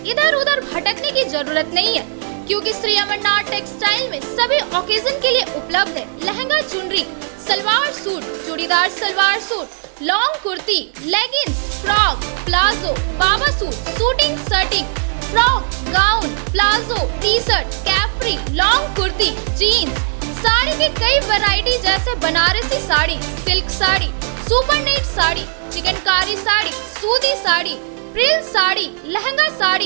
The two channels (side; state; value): left; silent; digital silence